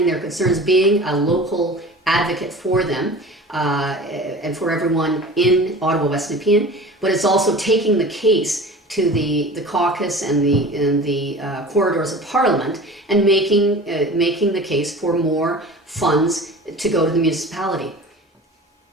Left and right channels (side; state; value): both; normal; correlation 0.39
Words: their concerns, being a local advocate for them, and for everyone in Ottawa West Nepean, but it's also taking the case to the caucus and the corridors of Parliament and making the case for more funds to go to the municipality.